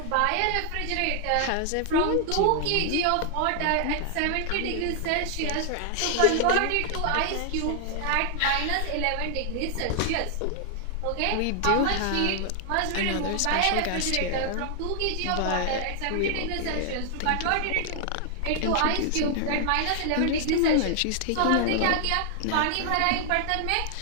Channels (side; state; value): both; different; correlation 0.00